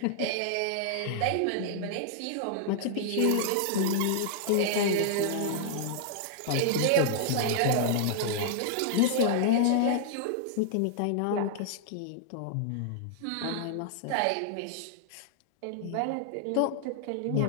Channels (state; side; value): different; both; correlation -0.01